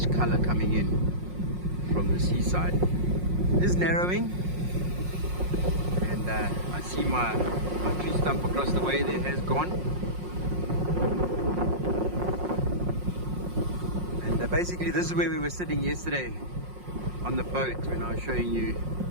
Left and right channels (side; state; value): left; late; 5.5 ms